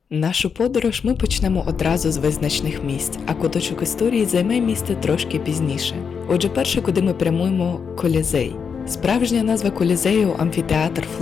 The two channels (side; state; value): right; quieter; 6.3 dB